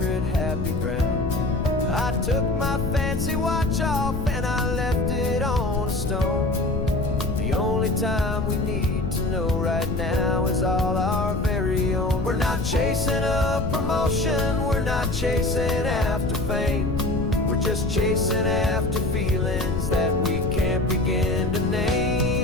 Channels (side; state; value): left; noise; rumble, 3 dB below the sound